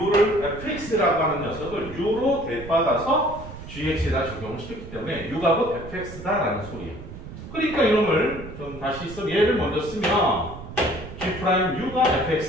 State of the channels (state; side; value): noise; right; rumble, 13 dB below the sound